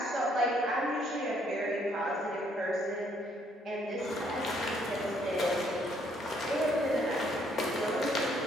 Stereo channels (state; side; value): normal; both; correlation 0.67